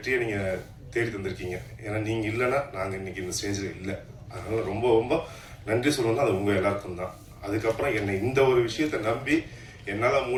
நீங்கள் தேடி தந்திருக்கீங்க. ஏன்னா நீங்கள் இல்லைன்னா நாங்கள் இன்னைக்கு இந்த ஸ்டேஜில் இல்லை. அதனால ரொம்ப ரொம்ப நன்றி சொல்லணும்னா அது உங்கள் எல்லாருக்கும் தான். அதுக்கப்புறம் என்னை இந்த ஒரு விஷயத்தை நம்பி என்னால்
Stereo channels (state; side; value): identical; both; correlation 1.00